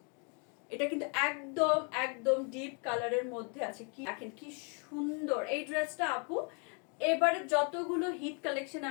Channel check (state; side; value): quieter; right; 37.7 dB